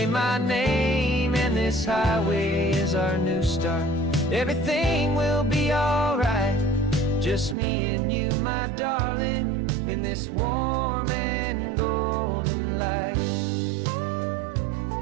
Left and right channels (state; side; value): drops out; left; at 7.6 s